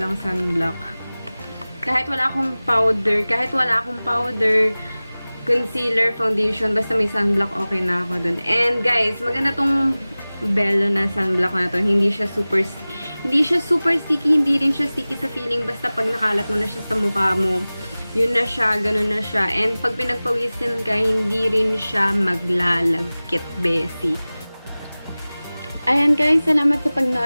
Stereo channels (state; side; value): inverted; both; correlation -0.98